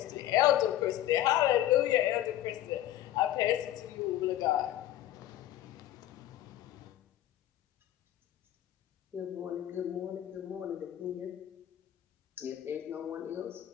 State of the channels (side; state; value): right; quieter; 12.9 dB